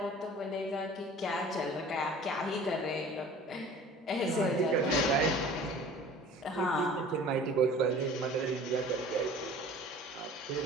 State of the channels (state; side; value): normal; both; correlation 0.45